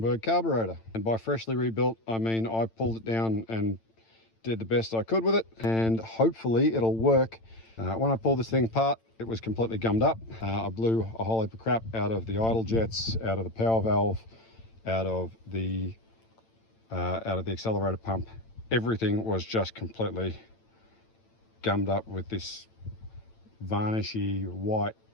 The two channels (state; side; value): late; right; 8.9 ms